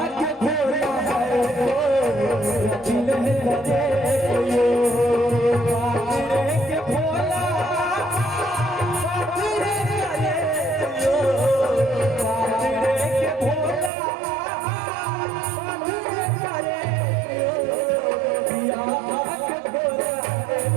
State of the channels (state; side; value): drops out; left; at 13.9 s